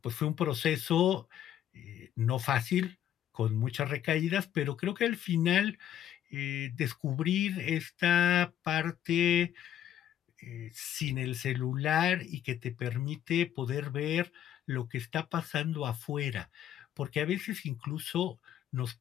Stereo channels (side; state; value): right; quieter; 10.8 dB